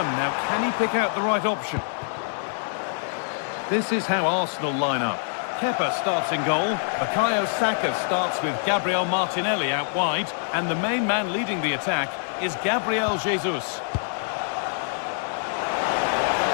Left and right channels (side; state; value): right; silent; 62 dB below the other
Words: Now, can he pick out the right option? This is how Arsenal line up. Kepa starts in goal. Bukayo Saka starts with Gabriel Martinelli out wide. And the main man leading the attack is Gabriel Jesus.